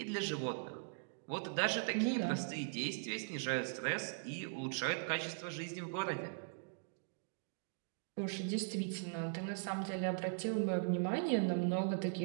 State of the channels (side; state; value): left; silent; digital silence